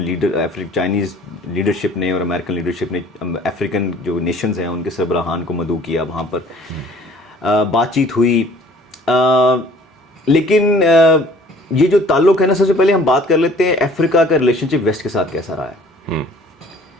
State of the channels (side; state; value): both; normal; correlation 0.52